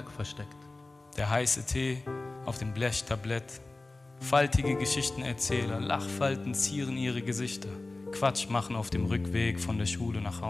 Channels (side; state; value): right; quieter; 3.2 dB